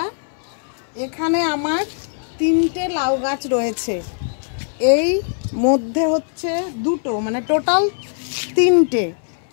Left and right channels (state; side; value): silent; right; 64 dB below the other